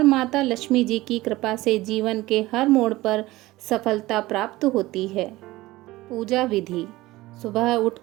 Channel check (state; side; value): quieter; left; 18.6 dB